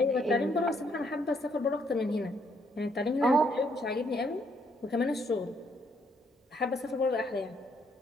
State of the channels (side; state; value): both; normal; correlation 0.71